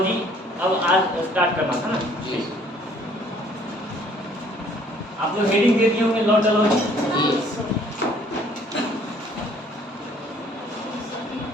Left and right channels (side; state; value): both; normal; correlation 0.59